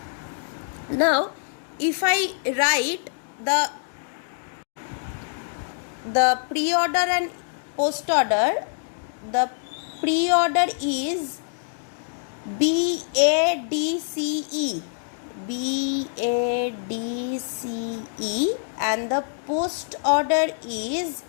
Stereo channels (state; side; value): silent; right; digital silence